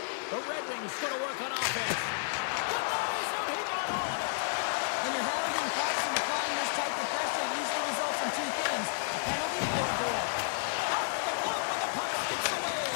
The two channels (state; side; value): silent; right; 57 dB below the other